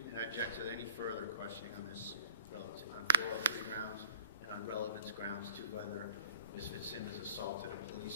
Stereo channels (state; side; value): inverted; both; correlation -0.44